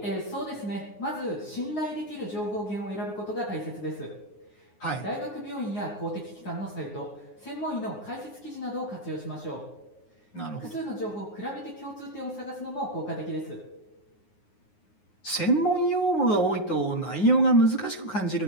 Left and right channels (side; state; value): right; late; 9.6 ms